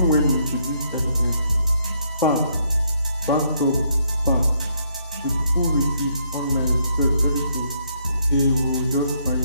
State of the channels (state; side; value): inverted; both; correlation -0.72